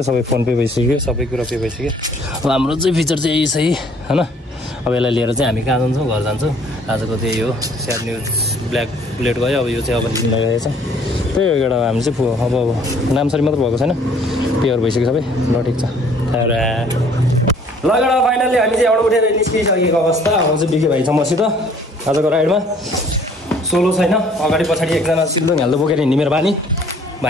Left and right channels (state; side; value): normal; both; correlation 0.58